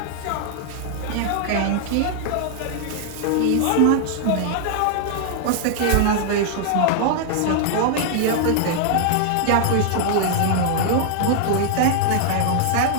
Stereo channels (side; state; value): both; different; correlation 0.00